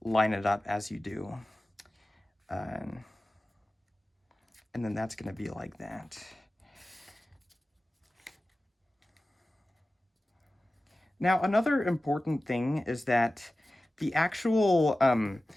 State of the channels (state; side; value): normal; both; correlation 0.96